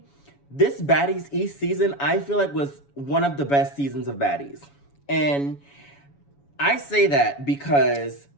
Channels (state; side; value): late; right; 7.1 ms